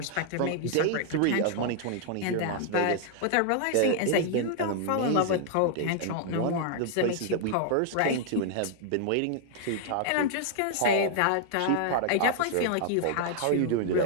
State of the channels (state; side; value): different; both; correlation 0.00